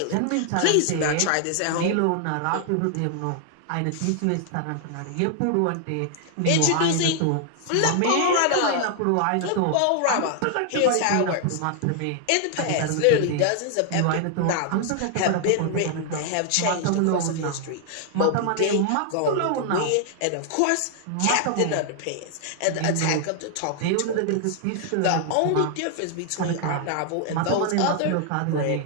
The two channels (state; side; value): different; both; correlation 0.00